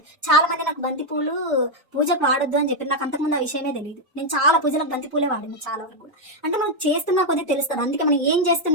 చాలా మంది నాకు బంతి పూలు పూజకు వాడొద్దు అని చెప్పి నాకు అంతకుముందు ఆ విషయమే తెలియదు. నేను చాలా పూజలకు బంతి పూలే వాడాను చాలా వరకు కూడా. అంటే మనం చేస్తున్నా కొద్దిగా తెలుస్తుంది. అందుకే మనం ఏం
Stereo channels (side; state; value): both; normal; correlation 0.01